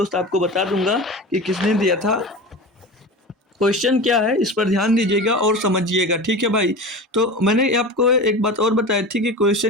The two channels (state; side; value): normal; both; correlation 0.30